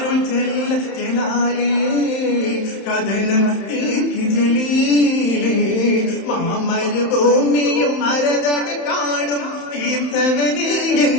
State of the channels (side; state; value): right; late; 31 ms